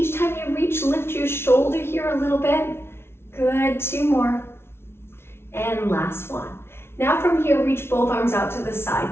time you reach, lift your shoulder here a little bit. Good, 2 more. And last one. Now from here, reach both arms out to the side,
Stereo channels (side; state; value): right; late; 0.12 ms